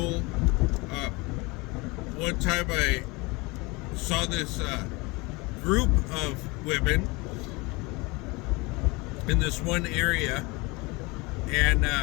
One time I saw this group of women in this one area, and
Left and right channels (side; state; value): right; quieter; 25.4 dB